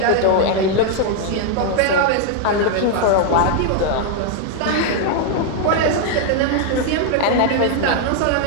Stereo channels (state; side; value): different; both; correlation 0.00